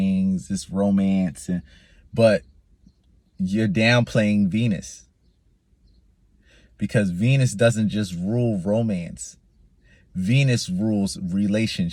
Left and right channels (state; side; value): identical; both; correlation 1.00